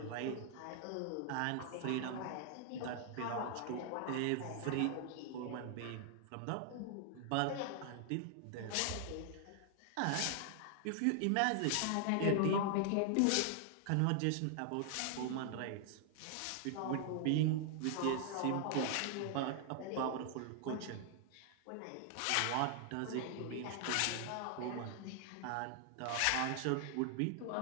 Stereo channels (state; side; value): different; both; correlation 0.00